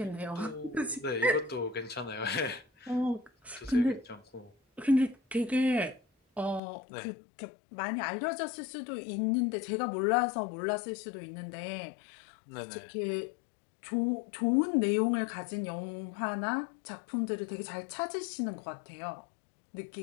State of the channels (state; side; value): drops out; right; at 6.6 s